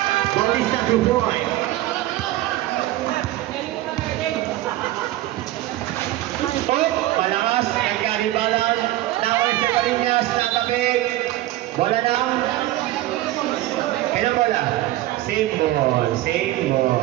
Bautista 2 points. Malakas. Nagkaribalan. Naway sa Barinas. Natabig. Bola lang. Kailan bola? Same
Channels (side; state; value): left; quieter; 15.9 dB